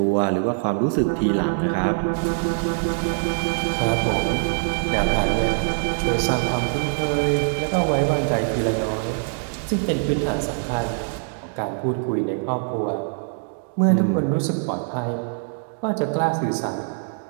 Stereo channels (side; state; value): left; silent; digital silence